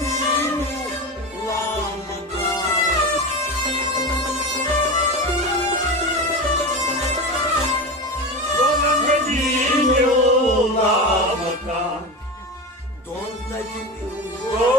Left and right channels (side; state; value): both; normal; correlation 0.23